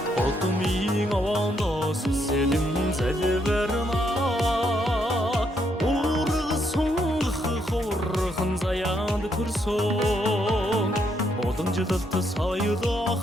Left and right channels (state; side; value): normal; both; correlation 0.75